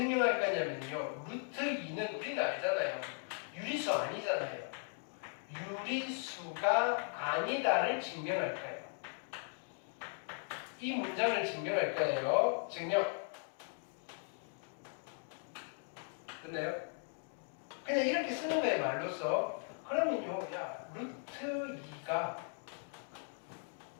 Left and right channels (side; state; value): right; silent; 52 dB below the other